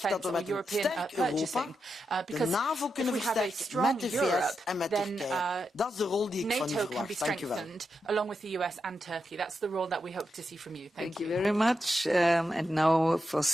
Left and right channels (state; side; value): normal; both; correlation 0.86